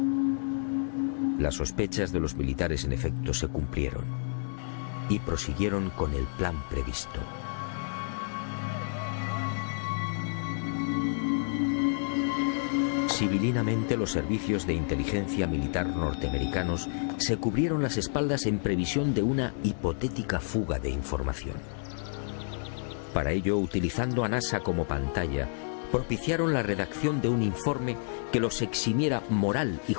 Las sospechas de los militares en efecto se cumplieron y prosiguieron con el plan previsto. Civilinamente, los servicios de inteligencia militar norteamericanos se cubrieron las espaldas en previsión de una hipotética fuga de información. Para ello, utilizando a NASA como pantalla, propiciaron la redacción de un informe que los eximiera moral y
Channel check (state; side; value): silent; right; digital silence